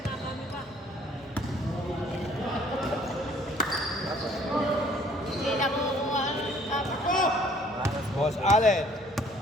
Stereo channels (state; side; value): normal; both; correlation 0.58